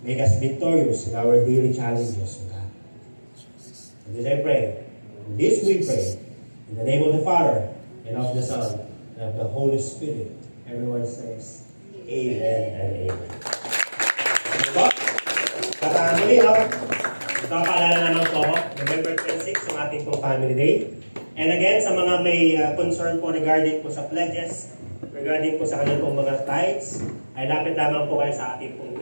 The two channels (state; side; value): inverted; both; correlation -1.00